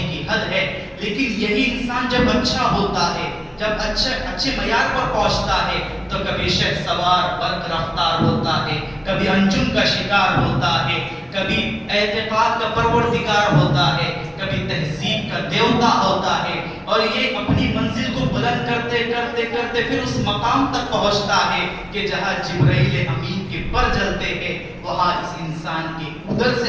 کی حد ہے۔ لیکن یہی انسان جب اچھا ہوتا ہے، جب اچھے معیار پر پہنچتا ہے، تو کبھی شہسوار برق رفتار ہوتا ہے، کبھی انجم کا شکار ہوتا ہے، کبھی اعتقاد کا پروردگار ہوتا ہے، کبھی تہذیب کا دیوتا ہوتا ہے، اور یہ اپنی منزل کو بلند کرتے کرتے کرتے پھر اس مقام تک پہنچتا ہے کہ جہاں جبرائیل امین کے پر جلتے ہیں، وہاں اس انسان کی ادھر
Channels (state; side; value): identical; both; correlation 1.00